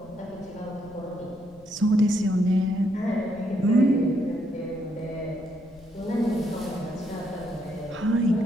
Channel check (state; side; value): noise; left; rumble, 24 dB below the sound